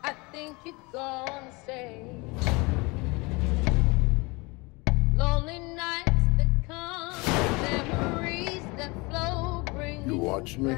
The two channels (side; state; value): right; quieter; 25.8 dB